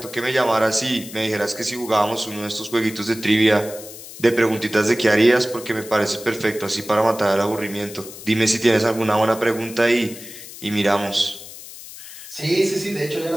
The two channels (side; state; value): left; noise; hiss, 15 dB below the sound